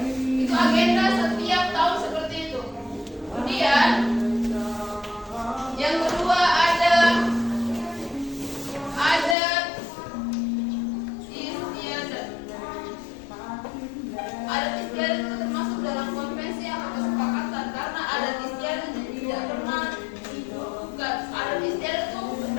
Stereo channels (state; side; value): drops out; right; at 9.3 s